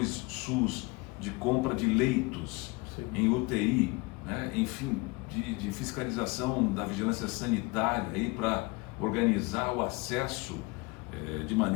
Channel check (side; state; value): right; quieter; 25.8 dB